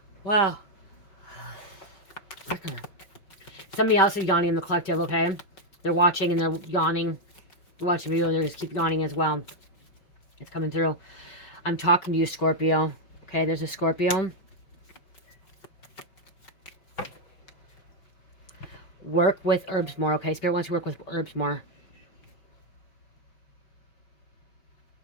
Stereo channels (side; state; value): right; late; 5.2 ms